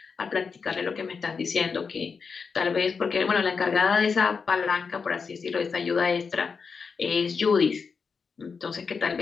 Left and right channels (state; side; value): quieter; right; 5.4 dB